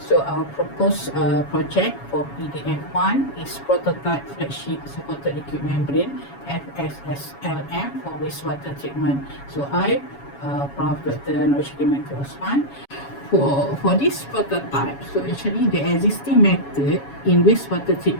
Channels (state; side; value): late; right; 7.2 ms